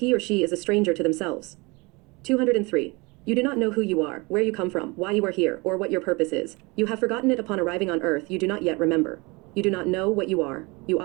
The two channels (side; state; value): left; quieter; 26.6 dB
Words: or she is a stranger to themselves. 203. You do not know who you are, where you come from, why you are here, or what your purpose is. You have forgotten it upon arriving on earth. You do not yet remember. You do not know what you are. You